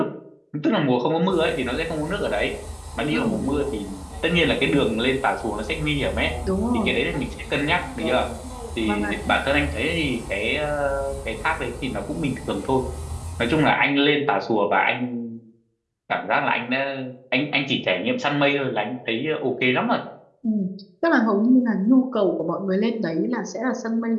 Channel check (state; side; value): identical; both; correlation 1.00